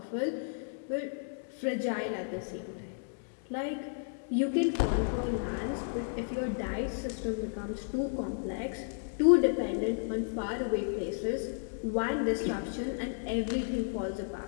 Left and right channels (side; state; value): right; silent; digital silence